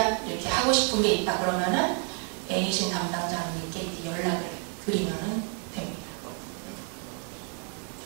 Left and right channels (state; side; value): quieter; left; 38.9 dB